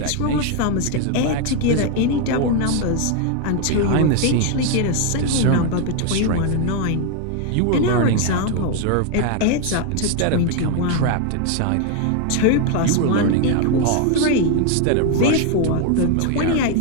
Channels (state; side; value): different; both; correlation 0.01